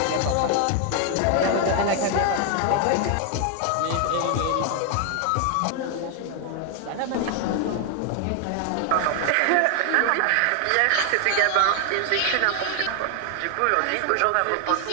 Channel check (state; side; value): different; both; correlation 0.00